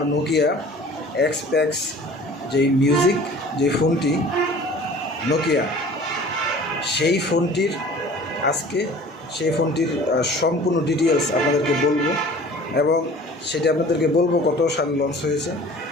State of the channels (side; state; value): both; normal; correlation 0.46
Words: নোকিয়া এক্সপ্যাক্স যেই মিউজিক যে ফোনটি নোকিয়া, সেই ফোনটির সম্পূর্ণ ডিটেলস আপনাদেরকে বলবো এবং সেটা আপনাদেরকে বলবো কত সালে লঞ্চ হয়েছে।